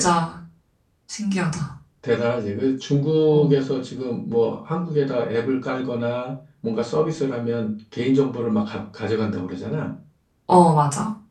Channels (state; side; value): identical; both; correlation 1.00